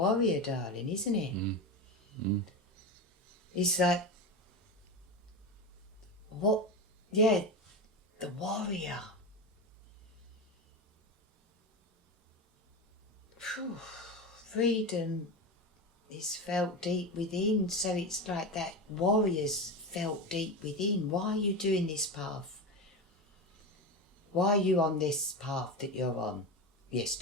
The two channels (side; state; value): both; normal; correlation 0.20